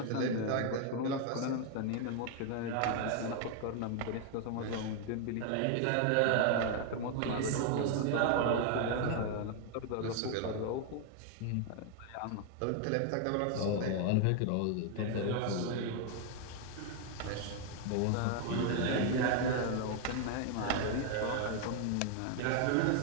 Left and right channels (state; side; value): different; both; correlation 0.00